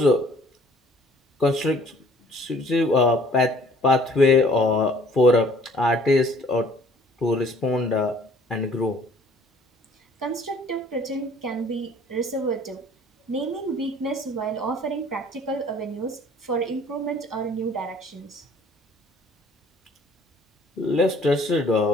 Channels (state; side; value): normal; both; correlation 0.55